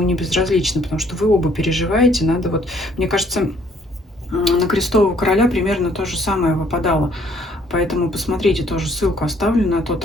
не безразличны, потому что вы оба переживаете. Надо вот, мне кажется, на крестового короля примерно то же самое выпадало. Поэтому посмотрите, тоже ссылку оставлю на тот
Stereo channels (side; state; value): both; normal; correlation 0.63